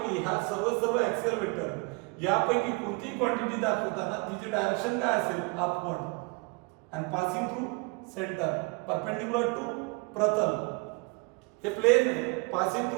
ह्या सर्व ऍक्सियल वेक्टर यापैकी कोणतीही क्वांटिटी दाखवताना तिची डायरेक्शन काय असेल? अपवर्ड. आणि passing through centre perpendicular to प्रतल. हे प्लेन आहे. Passing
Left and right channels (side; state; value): left; quieter; 28.9 dB